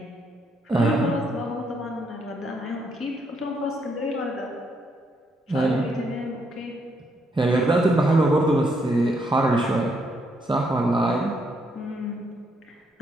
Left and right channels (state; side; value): normal; both; correlation 0.75